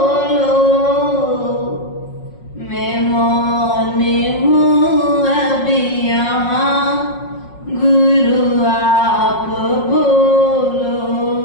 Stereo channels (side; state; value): right; late; 5.5 ms